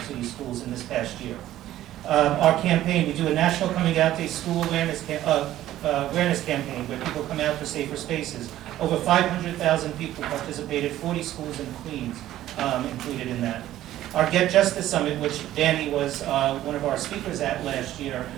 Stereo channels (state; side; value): quieter; left; 13.6 dB